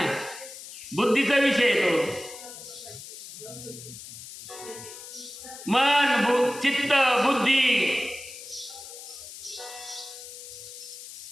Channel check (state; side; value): noise; left; hiss, 13 dB below the sound